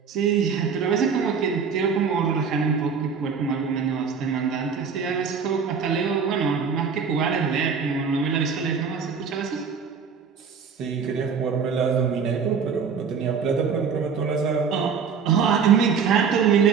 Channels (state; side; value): quieter; left; 6.1 dB